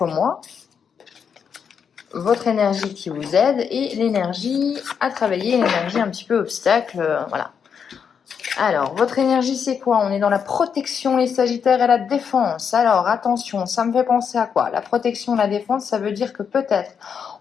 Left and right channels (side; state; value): right; quieter; 7.0 dB